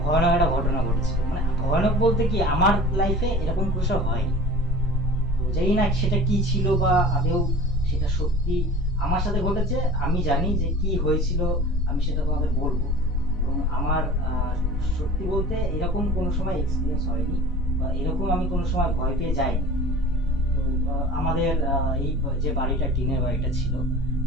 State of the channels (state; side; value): normal; both; correlation 0.41